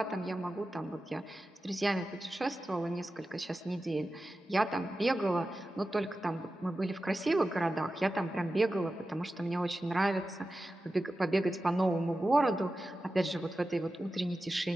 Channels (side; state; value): both; normal; correlation 0.93